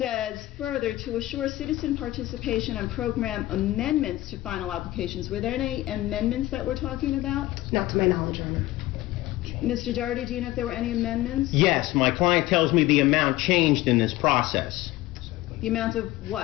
further to assure citizen participation on program amendments to final applications. Were there any amendments that we're talking about? Not to my knowledge, Your Honor. Mr. Doherty, do you know if there were any amendments? Yes, my client tells me the amount changed in this process. The amount of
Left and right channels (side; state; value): right; quieter; 17.0 dB